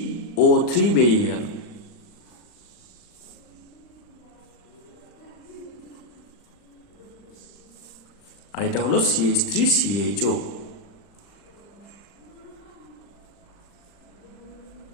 বেরিয়ে গেল। আর এটা হলো CH3CHO।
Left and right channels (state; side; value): late; right; 40 ms